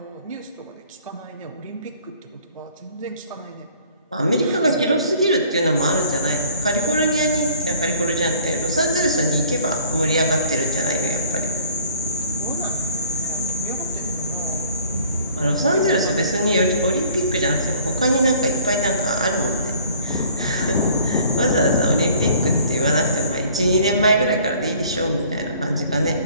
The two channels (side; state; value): both; inverted; correlation -0.53